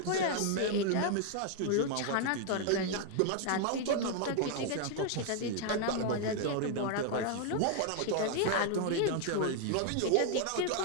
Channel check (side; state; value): both; different; correlation 0.00